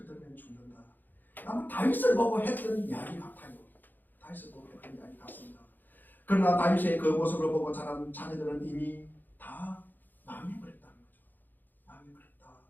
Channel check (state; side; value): late; right; 0.088 ms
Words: 죽는다. 아마 다윗을 보고 했던 이야기 같아요. 다윗을 보고 했던 이야기 같습니다. 그러나 다윗의 그 모습을 보고 자란 자녀들은 이미 다 망해버렸다는 거죠. 망해버렸다.